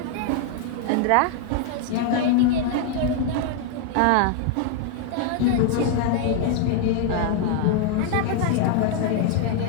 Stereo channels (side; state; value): both; different; correlation 0.00